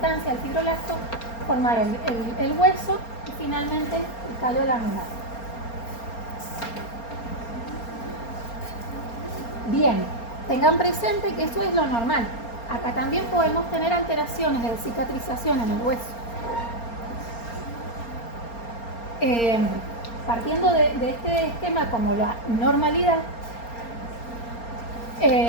el fibroblasto, formar el hueso y finalmente el callo laminar. Bien, tengan presente que eso es lo normal. Acá también podemos tener alteraciones de cicatrización en el hueso. Partiendo de este esquema como la normalidad,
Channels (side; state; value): right; late; 4.3 ms